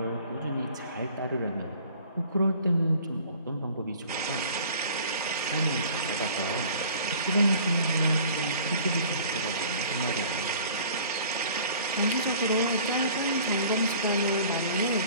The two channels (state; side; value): inverted; both; correlation -0.49